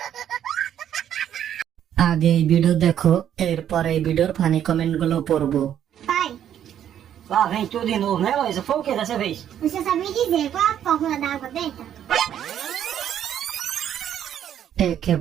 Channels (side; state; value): left; quieter; 10.1 dB